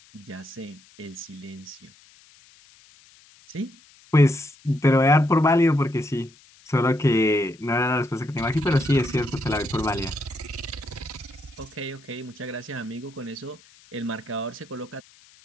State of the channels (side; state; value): left; noise; hiss, 27 dB below the sound